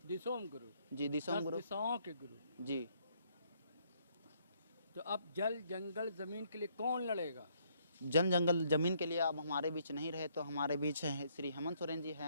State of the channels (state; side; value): inverted; both; correlation -0.69